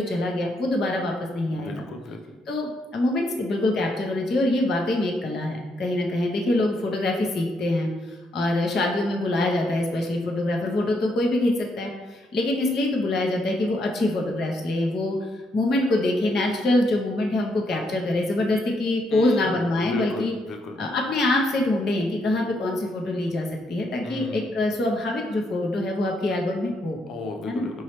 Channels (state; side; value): normal; both; correlation 0.77